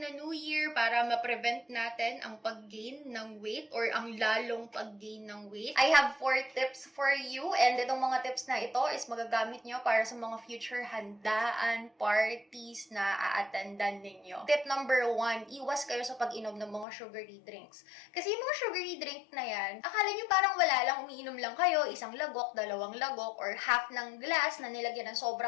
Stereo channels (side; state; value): right; drops out; at 16.9 s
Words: New Year, para ma-prevent natin ang pag-gain ng weight or ang lalong pag-gain ng weight, I have 4 tips for you. And itong mga tips na ito is magagamit nyo para sa mga future handaan, parties na a-attendan ninyo. Tip number 1, iwas kayo sa pag-inom ng mga sugary drinks. Kasi yung mga sugary drink na yan, akala nyo parang wala lang, umiinom lang kayo, isang lagok, 2 lagok, or half ng glass na nilagyan ng